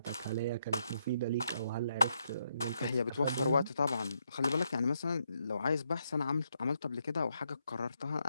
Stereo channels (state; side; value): inverted; both; correlation -0.78